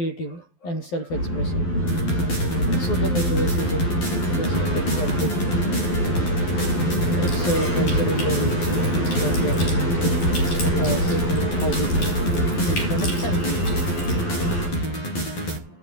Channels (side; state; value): right; late; 12 ms